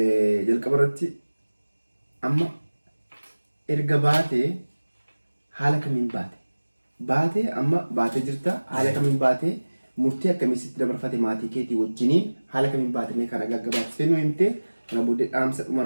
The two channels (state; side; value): inverted; both; correlation -1.00